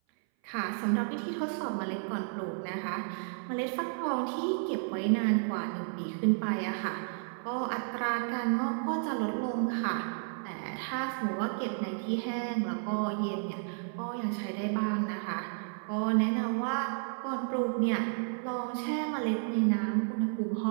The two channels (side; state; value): left; silent; 56 dB below the other